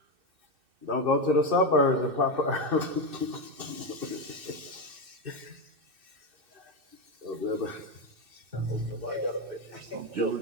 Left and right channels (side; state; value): left; late; 2.6 ms